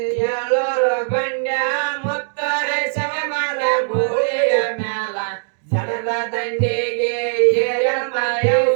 ಏಳೋರು ಗಂಡ್ಯ ಮುತ್ತರೆ ಶಮಮಾಲ ಗೋರಿಯ ಮ್ಯಾಲ ಜನದ ದಂಡಿಗೆ ಏರಮ್ಮ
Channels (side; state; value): left; silent; 66 dB below the other